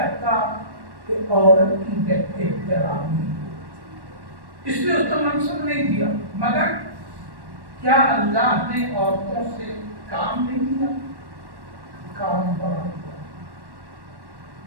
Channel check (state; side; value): late; left; 1.1 ms